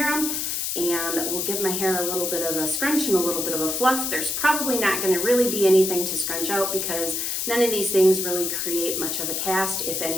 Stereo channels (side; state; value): left; noise; hiss, 1 dB below the sound